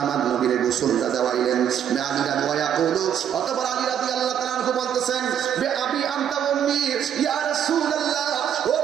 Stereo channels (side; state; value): left; quieter; 9.2 dB